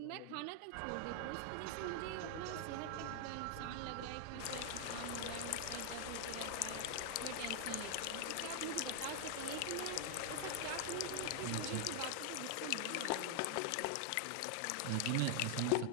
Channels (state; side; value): different; both; correlation 0.00